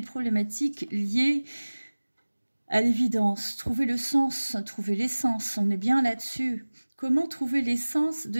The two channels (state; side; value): inverted; both; correlation -1.00